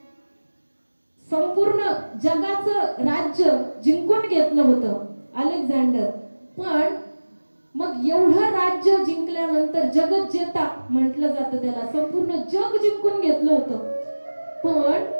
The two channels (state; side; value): inverted; both; correlation -1.00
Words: संपूर्ण जगाचं राज्य जिंकून घेतलं होतं अलेक्झांडर. पण मग एवढं राज्य जिंकल्यानंतर जगज्जेता म्हटलं जातं त्याला, संपूर्ण जग जिंकून घेतलं होतं.